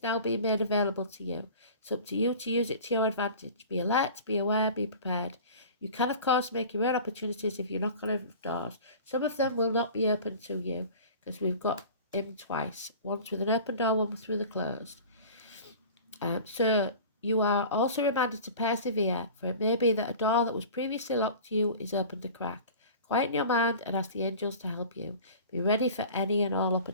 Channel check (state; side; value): inverted; both; correlation -0.40